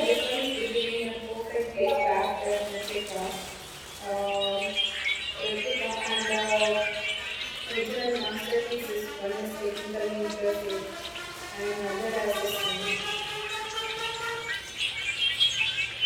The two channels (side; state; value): both; identical; correlation 1.00